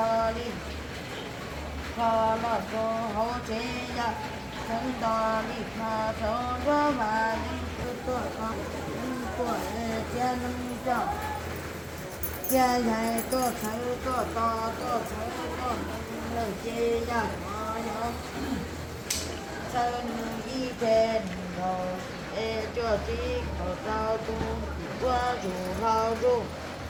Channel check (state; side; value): identical; both; correlation 1.00